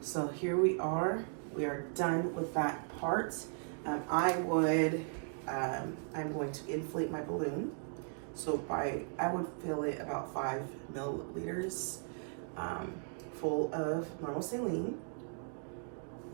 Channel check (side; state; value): left; silent; 53 dB below the other